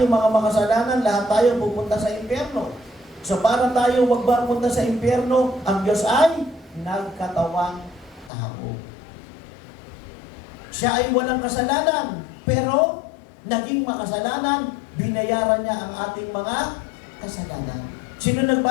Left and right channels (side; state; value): right; drops out; at 8.3 s